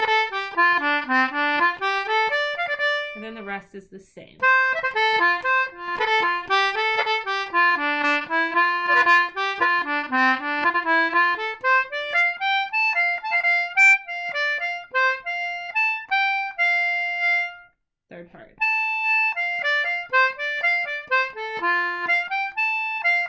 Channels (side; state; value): both; identical; correlation 1.00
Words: And then the rest is the same. Third part.